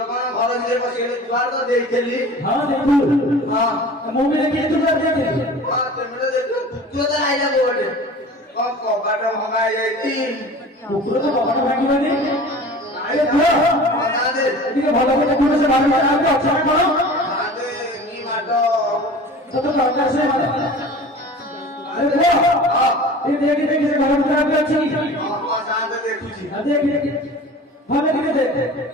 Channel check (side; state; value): both; normal; correlation 0.40